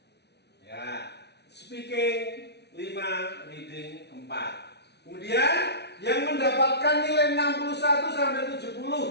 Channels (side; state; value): right; late; 0.49 ms